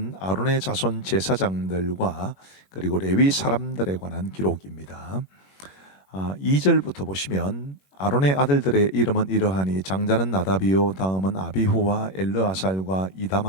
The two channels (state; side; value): late; right; 21 ms